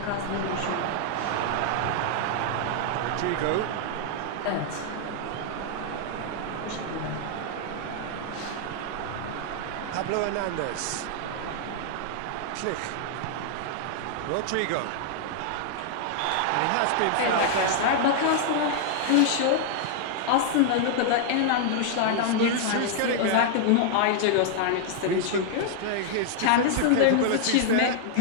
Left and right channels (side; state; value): both; different; correlation -0.01